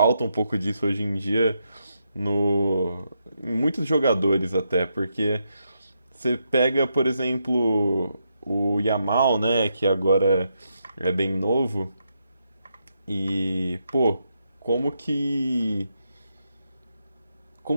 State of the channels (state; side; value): inverted; both; correlation -0.81